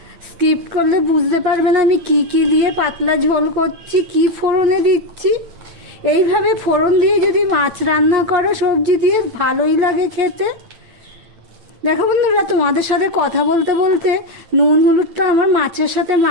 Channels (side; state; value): left; late; 8.9 ms